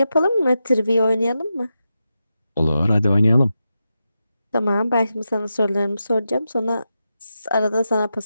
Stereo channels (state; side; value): inverted; both; correlation -0.89